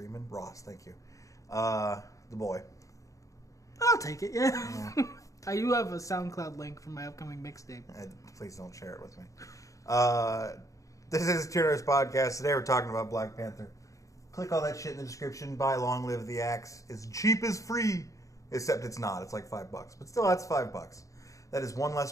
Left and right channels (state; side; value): late; right; 0.16 ms